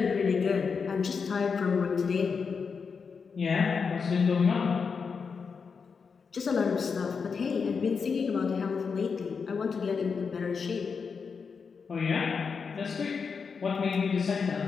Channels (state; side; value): quieter; right; 5.6 dB